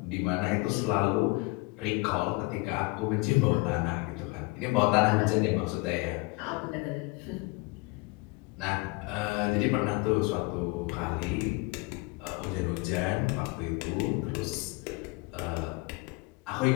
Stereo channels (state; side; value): quieter; right; 25.4 dB